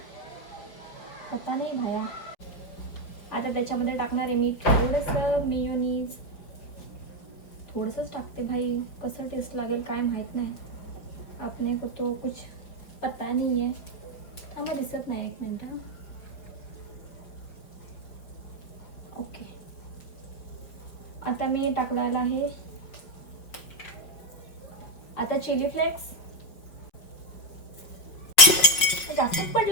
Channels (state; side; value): late; right; 5.4 ms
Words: पता नाही भाया. आता त्याच्यामध्ये टाकणार आहे मी थोडंसं मेयोनीज, थोडंसंच टाकते भाई, कसं टेस्ट लागेल काय माहीत नाही. आपने को तो कुछ पता नहीं है. थांबा दिसत नाही, 1 मिनिट. ओके, आता मी टाकलेला आहे आता चिली फ्लेक्स. जास्तच